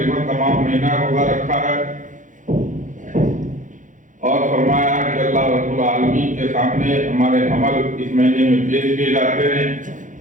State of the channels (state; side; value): late; left; 0.37 ms